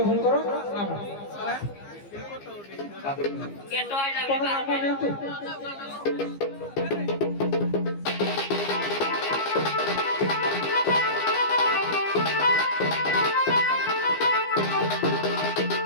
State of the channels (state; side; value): late; right; 15 ms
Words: ନାମ। ଆପଣ ନାମ ନିଅନ୍ତୁ।